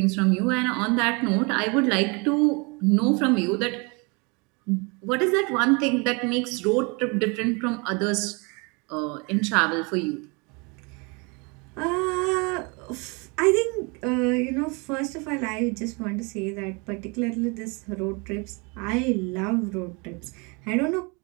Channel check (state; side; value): quieter; left; 30.3 dB